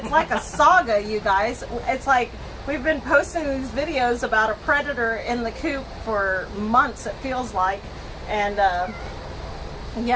like a saga, you guys. It's like we've been posting these videos about a predator in the coop for months, it feels like. And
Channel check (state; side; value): identical; both; correlation 1.00